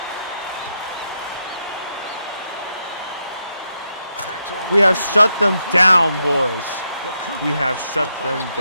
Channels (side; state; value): both; inverted; correlation -0.82